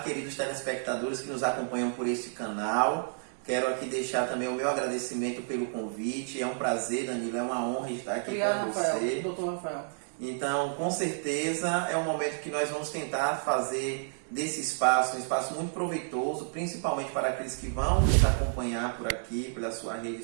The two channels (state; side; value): silent; left; digital silence